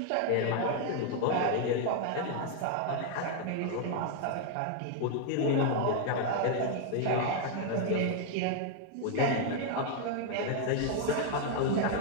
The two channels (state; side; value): different; both; correlation 0.00